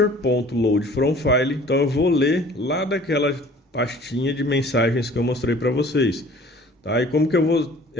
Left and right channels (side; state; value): both; normal; correlation 0.50